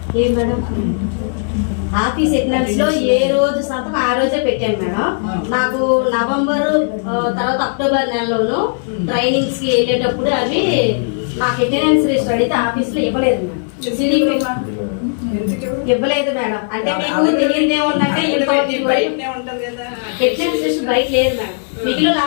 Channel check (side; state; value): right; silent; digital silence